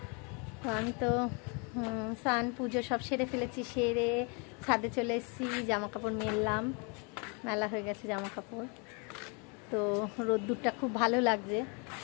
তো আমি তো স্নান পুজো সব সেরে ফেলেছি, সেরে ছাদে চলে এসেছি, জামা কাপড় মেললাম, মেলা হয়ে গেছে জামা কাপড়। তো রোদ্দুরটা খুব ভালো লাগছে,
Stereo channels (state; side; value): quieter; right; 33.6 dB